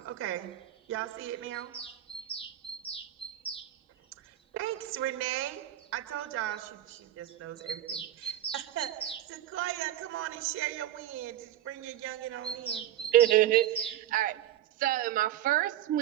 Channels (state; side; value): quieter; left; 12.4 dB